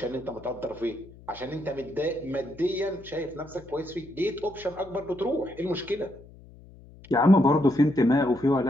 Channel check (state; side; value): noise; left; hum, 21 dB below the sound